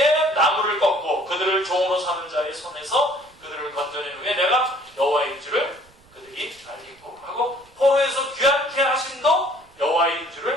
나무를 꺾고 그들을 종으로 삼은 자의 손에서 그들을 건져낸 후에 내가 여호와인 줄을 그들이 알리고 하고, 포로에서 귀환케 하심도 여호와인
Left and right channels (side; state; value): right; noise; rumble, 29 dB below the sound